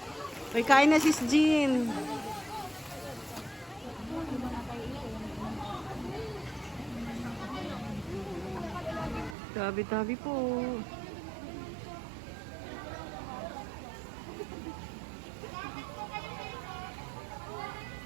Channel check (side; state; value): left; drops out; at 9.3 s